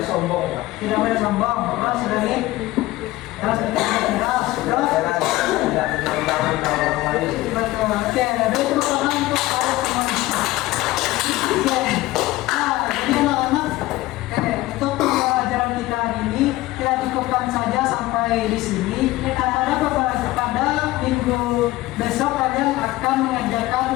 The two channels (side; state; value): right; quieter; 17.9 dB